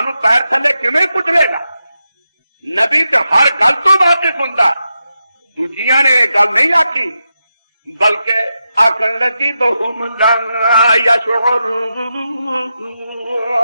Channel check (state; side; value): inverted; both; correlation -0.88